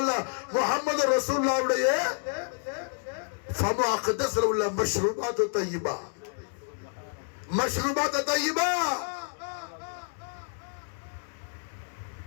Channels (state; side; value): silent; right; 58 dB below the other